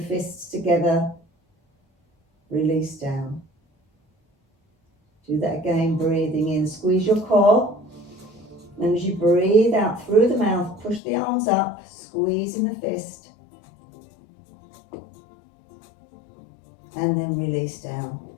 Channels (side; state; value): right; drops out; at 11.0 s